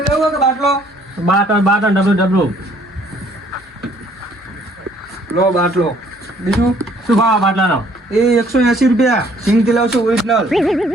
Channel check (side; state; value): both; normal; correlation 0.61